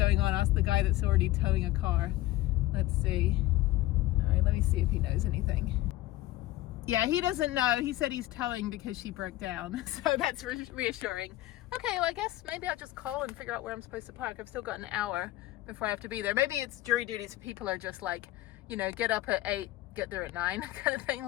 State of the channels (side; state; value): right; quieter; 16.6 dB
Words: on. Ask the guy that's already towing a car. Let's see. All right, let me see if he knows anything. Yeah, he doesn't know. He said he's towing because she broke down, so that's reassuring. Okay, well, I guess maybe I'll just call and figure out where I'm supposed to park. I've still got an hour before I have to be there. Maybe it's jury duties. People are just like, get up at 8, get there at 9 kind of thing,